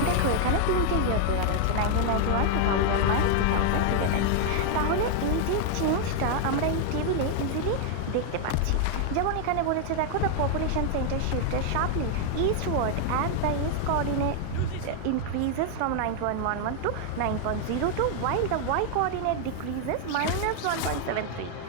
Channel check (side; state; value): both; different; correlation 0.00